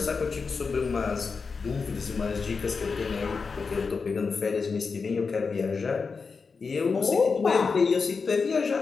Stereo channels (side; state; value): right; quieter; 4.9 dB